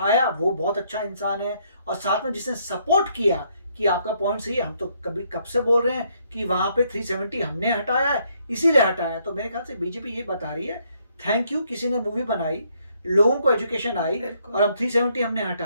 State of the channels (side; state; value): both; inverted; correlation -0.71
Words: वो बहुत अच्छा इंसान है, और साथ में जिसने सपोर्ट किया कि आपका पॉइंट सही है, हम तो कब से बोल रहे हैं कि वहां पे 370 हमने हटाया है, इसीलिए हटाया। तो मेरे ख्याल से बीजेपी ये बता रही है थैंक यू, किसी ने मूवी बनाई, लोगों को एजुकेशन आई, और हम 370 हमने